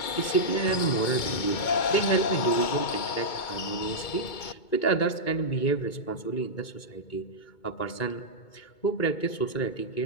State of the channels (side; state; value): right; late; 2.2 ms